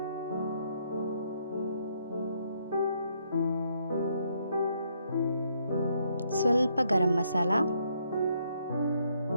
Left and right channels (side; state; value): both; inverted; correlation -0.73